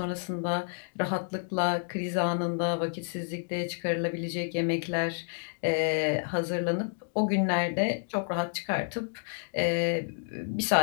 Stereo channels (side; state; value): right; silent; digital silence